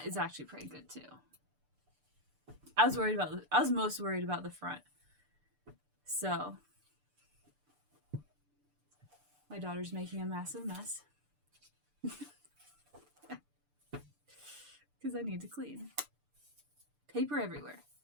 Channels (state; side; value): late; left; 6.8 ms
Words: is actually pretty good too. I was most worried about the front. So, my daughter's making a massive mess. Because I need to clean. Paper everywhere.